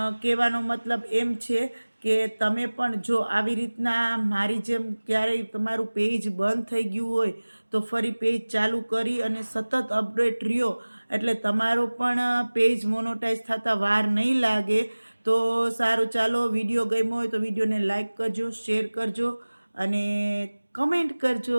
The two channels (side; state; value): both; inverted; correlation -1.00